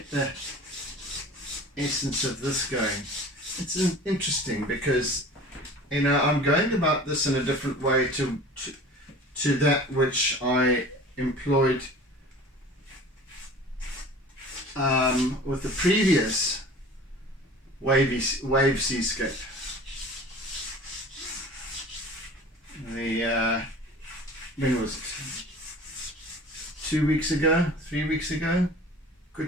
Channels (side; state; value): both; normal; correlation 0.42